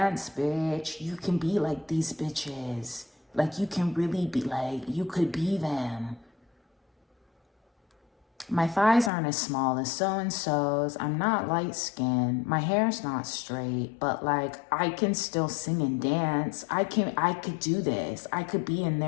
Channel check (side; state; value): right; drops out; at 9.1 s